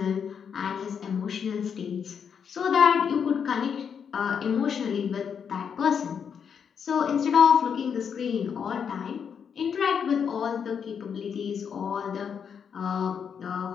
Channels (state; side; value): quieter; right; 7.2 dB